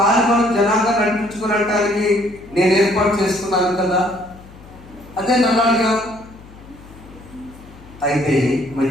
జనాంగా నడిపించుకునడానికి నేను ఏర్పాటు చేసుకున్నాను కదా, అదే నల్లాడుగా. అయితే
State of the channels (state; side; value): noise; left; hum, 21 dB below the sound